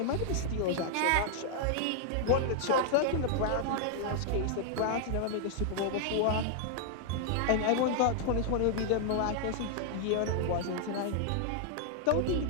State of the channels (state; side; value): different; both; correlation -0.01